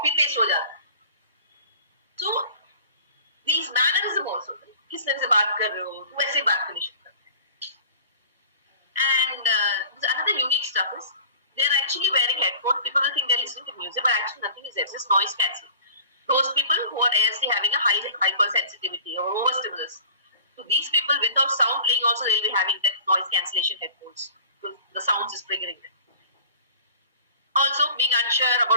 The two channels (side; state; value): both; inverted; correlation -0.43